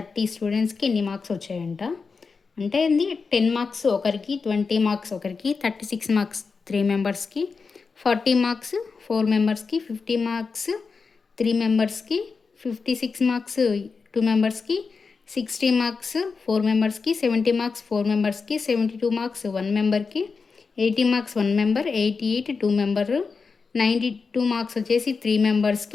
marks వచ్చాయంట. అంటే ఇది 10 marks ఒకరికి, 20 marks ఒకరికి, 36 మార్క్స్ 3 మెంబర్స్కి, 40 మార్క్స్ 4 మెంబర్స్కి, 50 మార్క్స్ 3 మెంబర్స్కి, 56 మార్క్స్ 2 మెంబర్స్కి, 60 మార్క్స్ 4 మెంబర్స్కి, 70 మార్క్స్ 4 మెంబర్స్కి, 72 marks 1 మెంబర్కి, 80 marks 1 member, 88 2 member, 92 marks వచ్చేసి 3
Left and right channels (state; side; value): quieter; right; 4.8 dB